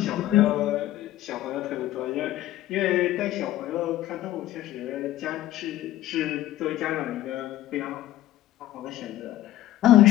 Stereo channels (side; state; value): right; quieter; 14.2 dB